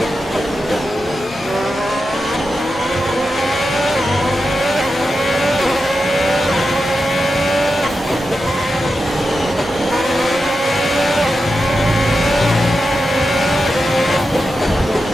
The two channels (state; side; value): normal; both; correlation 0.89